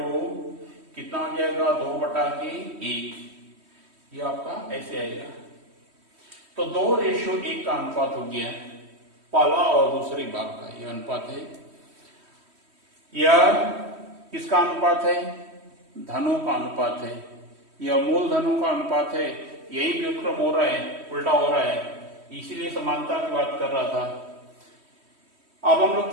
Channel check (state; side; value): late; left; 3.1 ms